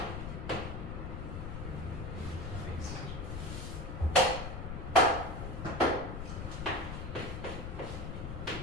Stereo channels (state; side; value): noise; left; rumble, 5 dB below the sound